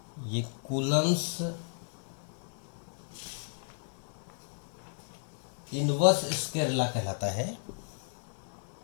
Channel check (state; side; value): silent; right; 55 dB below the other